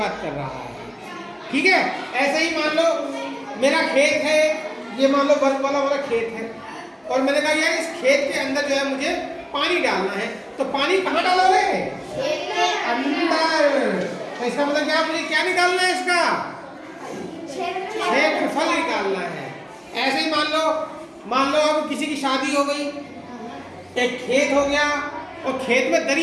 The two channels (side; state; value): both; identical; correlation 1.00